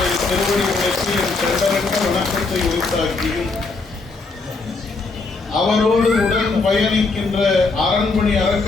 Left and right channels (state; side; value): quieter; right; 3.9 dB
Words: திருவடிகளுக்கு என் தெண்டரிட்ட வணக்கத்தை உரித்தாக்கியும் அவரோடு உடன் பயணிக்கின்ற அரண்மனை